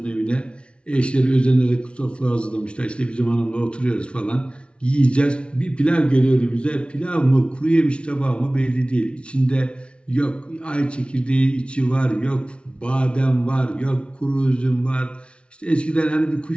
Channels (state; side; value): late; right; 0.059 ms